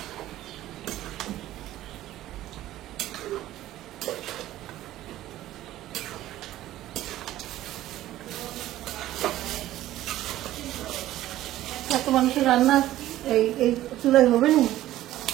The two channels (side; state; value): left; quieter; 14.4 dB